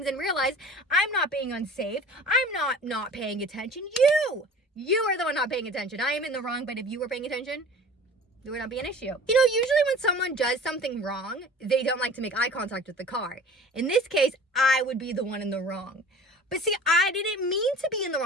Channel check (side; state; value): both; normal; correlation 0.42